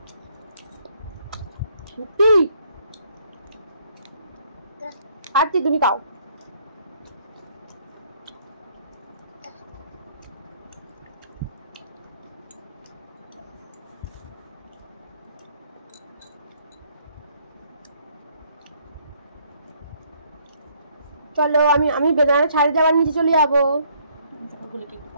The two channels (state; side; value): inverted; both; correlation -0.65